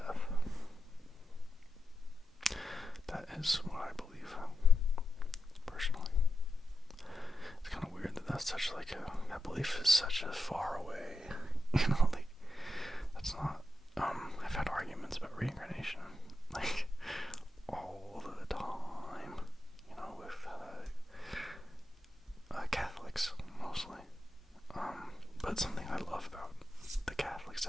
That is what I believe, personally. It's kind of weird that that's such like that belief is such a far away, that's not, I've had arguments about reincarnation, all the time, with, Catholics, mostly, but something I love about the Catholics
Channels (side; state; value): both; normal; correlation 0.87